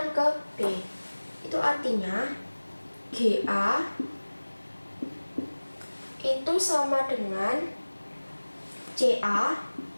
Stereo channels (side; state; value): both; inverted; correlation -1.00